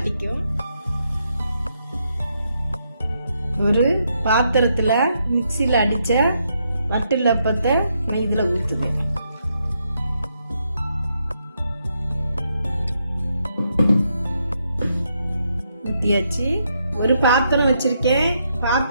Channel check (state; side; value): inverted; both; correlation -0.78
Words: ஒரு பாத்திரத்துல மிக்ஸில அடிச்ச வட்டிலப்பத்தை நான் இதுல ஊத்துவேன். ஊத்தியாச்சு. ஒரு பாத்திரம் வச்சிருக்கேன்,